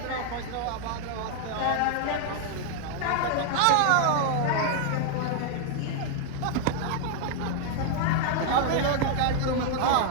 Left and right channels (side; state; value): both; different; correlation 0.00